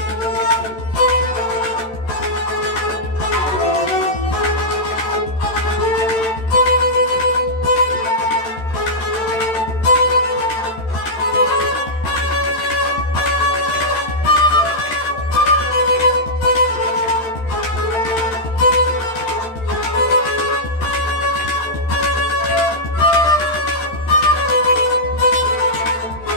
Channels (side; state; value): right; late; 13 ms